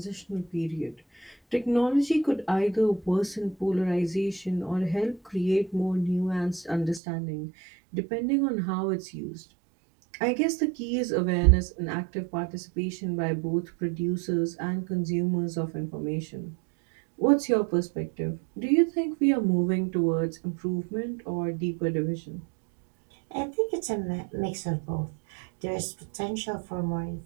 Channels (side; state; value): left; drops out; at 7.0 s